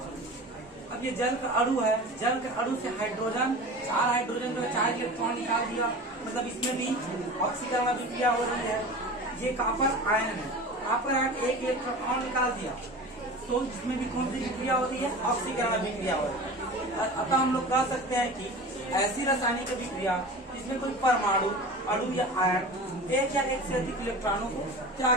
अब ये जल का अणु है, जल के अणु से हाइड्रोजन, 4 हाइड्रोजन जो है 4 इलेक्ट्रॉन निकाल दिया, मतलब इसमें भी ऑक्सीकरण अभिक्रिया हो रही है। ये कॉपर आयन है, कॉपर आयन एक इलेक्ट्रॉन निकाल दिया, तो इसमें भी कौन सी अभिक्रिया होती है? ऑक्सीकरण अभिक्रिया हो रही है। अतः हम लोग कह सकते हैं कि ऐसी रासायनिक अभिक्रिया जिसमें कोई परमाणु, अणु या आयन एक या एक से अधिक इलेक्ट्रॉनों को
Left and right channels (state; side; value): normal; both; correlation 0.35